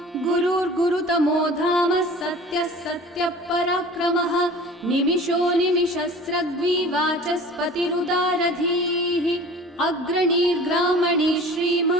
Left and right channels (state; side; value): normal; both; correlation 0.43